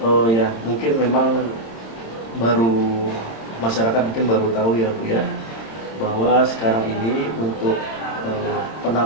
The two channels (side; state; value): right; late; 26 ms